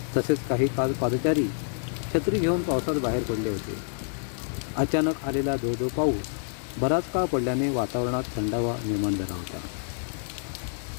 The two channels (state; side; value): silent; right; digital silence